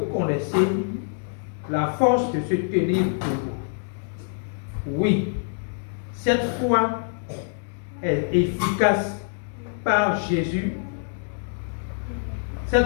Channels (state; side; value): silent; right; digital silence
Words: connaissez la force de se tenir debout. Oui, cette foi est efficace par Jésus.